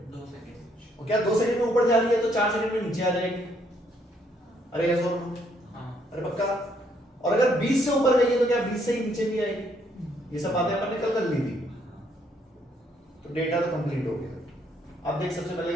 2 सेकंड और क्या 2 सेकंड में ऊपर जा रही है तो 4 सेकंड में नीचे आ जाएगी? अरे यस और नो? हाँ अरे पक्का? और अगर 20 से ऊपर गई है तो क्या 20 से ही नीचे भी आएगी? ये सब बातें अपन ने कल कर ली थी। तो डेटा तो कंप्लीट हो गया। अब देख सबसे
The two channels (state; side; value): normal; both; correlation 0.70